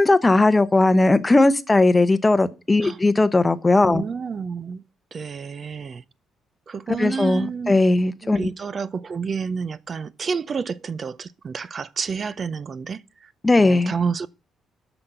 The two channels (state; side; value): normal; both; correlation 0.95